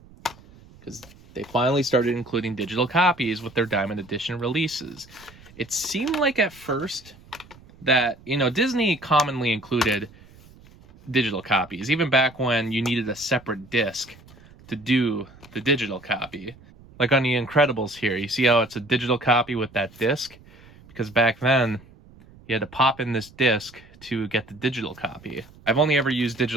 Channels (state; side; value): noise; right; rumble, 24 dB below the sound